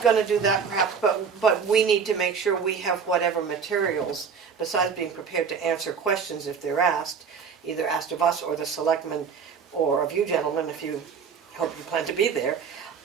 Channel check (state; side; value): quieter; left; 6.2 dB